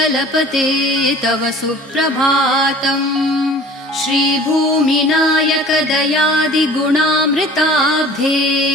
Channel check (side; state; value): both; normal; correlation 0.45